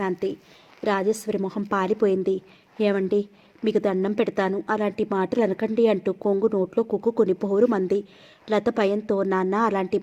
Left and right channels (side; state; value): both; identical; correlation 1.00